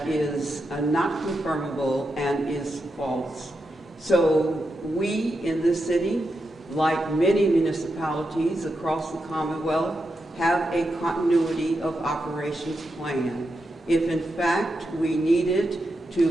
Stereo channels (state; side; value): normal; both; correlation 0.86